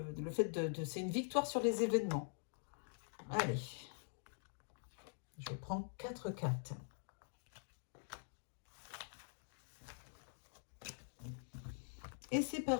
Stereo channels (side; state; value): right; silent; digital silence